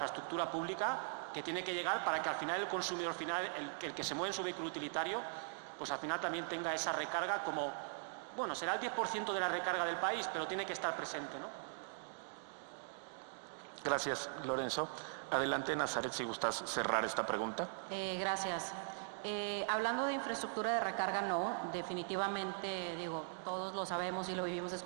pública que tiene que llegar para que al final el consumidor final, el que se mueve en su vehículo utilitario, pues al final también tenga esa recarga como, bueno, será el 10% de la recarga del país, pero tiene que estar presente, ¿no? Gracias, Lorenzo. Adelante, Nazaret, si gustas cerrar esta pregunta. Gracias. Hablando de infraestructura de recarga, no, definitivamente, digo, todos lo sabemos y lo vivimos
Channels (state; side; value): silent; left; digital silence